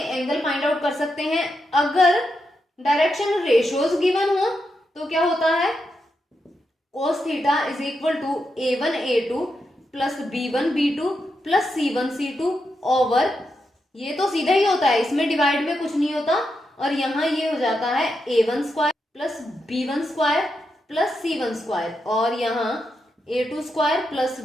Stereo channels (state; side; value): normal; both; correlation 0.85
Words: फाइंड आउट कर सकते हैं। अगर डायरेक्शन रेशियोज गिवन हो तो क्या होता है, cos theta is equal to A1 A2 plus B1 B2 plus C1 C2 over, ये तो सीधा ही होता है, इसमें डिवाइड में कुछ नहीं होता, और यहां ये हो जाता है A1 square plus B1 square plus C1 square, और यहाँ A2 square plus